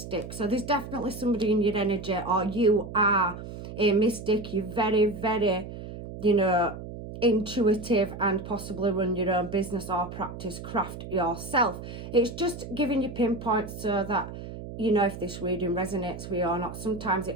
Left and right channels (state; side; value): noise; right; hum, 10 dB below the sound